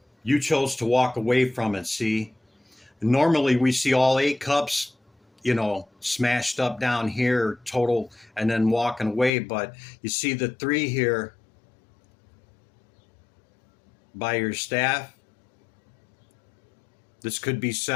you chose to walk away from it. See, normally we see all 8 cups, you know, smashed up down here total, and then walking away, but you see the 3 here by your staff. This could be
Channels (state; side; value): drops out; right; at 9.3 s